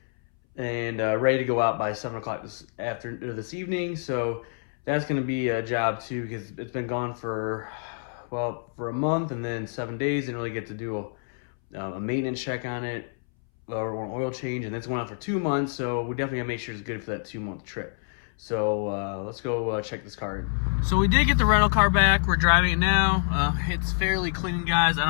and ready to go out by 7 o'clock this evening. So that's going to be a job too, because it's been gone for a month, and then 7 days. Didn't really get to do a maintenance check on it or an oil change, and that's going on for 2 months. So we definitely gotta make sure it's good for that 2-month trip. So let's go check this car in. So we did get the rental car back. We're driving it now. It's fairly clean, guys. I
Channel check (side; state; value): right; silent; 60 dB below the other